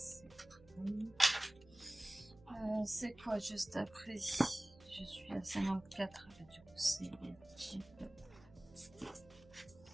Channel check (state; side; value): noise; right; hum, 23 dB below the sound